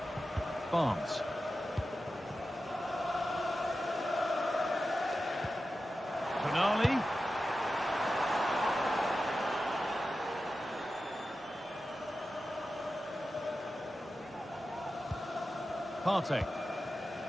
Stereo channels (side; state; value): both; normal; correlation 0.93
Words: Barnes. Tonali. Partey.